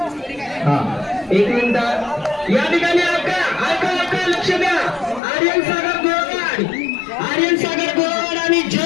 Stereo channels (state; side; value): drops out; right; at 5.2 s